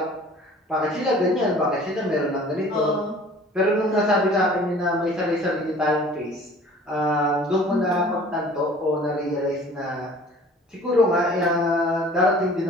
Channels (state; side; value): normal; both; correlation 0.49